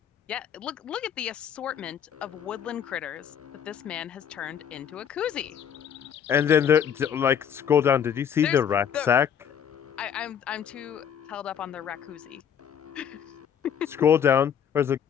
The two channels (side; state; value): right; quieter; 8.3 dB